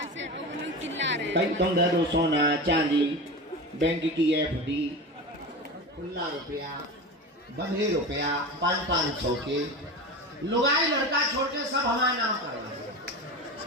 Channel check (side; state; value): both; normal; correlation 0.27